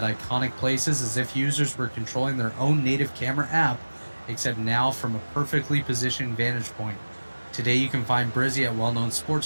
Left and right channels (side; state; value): both; inverted; correlation -1.00